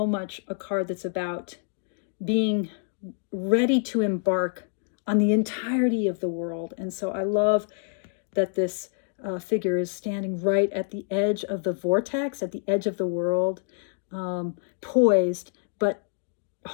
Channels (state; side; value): silent; right; 60 dB below the other